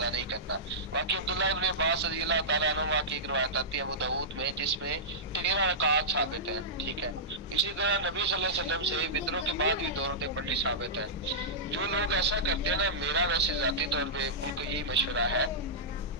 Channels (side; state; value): both; normal; correlation -0.13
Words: نہیں کرنا۔ باقی عبداللہ ابن عباس رضی اللہ تعالیٰ عنہ کی ایک روایت آتی ہے ابو داؤد میں جس میں 13 رکعات ثابت ہیں، ٹھیک ہے۔ اسی طرح نبی صلی اللہ علیہ وسلم سے وطروں کے بعد بھی 2 رکعتیں پڑھنی ثابت ہے۔ جو لوگ ایسا کرتے ہیں نا، میرا ویسے ذاتی طور پہ ان کو یہی مشورہ ہے